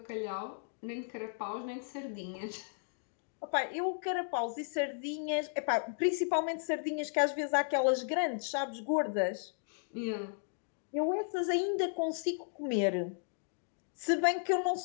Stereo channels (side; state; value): right; silent; digital silence